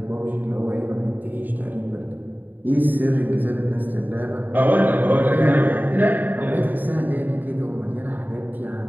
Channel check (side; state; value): left; late; 0.088 ms